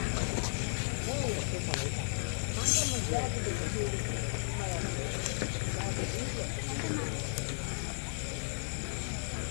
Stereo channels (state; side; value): silent; right; digital silence